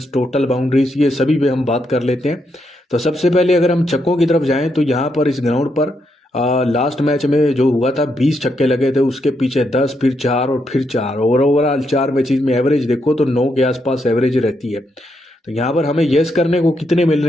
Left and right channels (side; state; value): both; normal; correlation 0.80